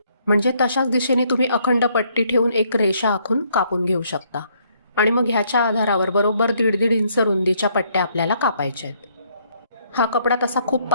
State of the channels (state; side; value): inverted; both; correlation -0.68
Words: म्हणजे तशाच दिशेने तुम्ही अखंड पट्टी ठेवून एक रेषा आखून कापून घेऊ शकता आणि मग ह्याच्या आधारावर बरोबर 1.5 इंच रुंदीच्या पट्ट्या आपल्याला कापायच्या आहेत. हा कपडा तसा खूप